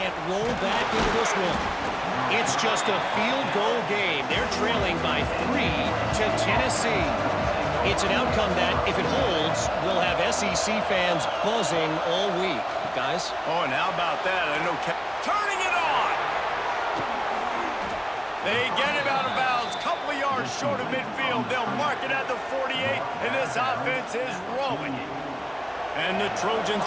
roll back into this one. It's just a field goal game. They're trailing by 3 to Tennessee. It's an outcome that, if it holds, will have SEC fans buzzing all week. Guys? Oh, and how about that? I know turning it on! They get him out of bounds. Couple of yards short of midfield. They'll mark it at the 48, and this offense is rolling. And the Trojans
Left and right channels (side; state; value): both; identical; correlation 1.00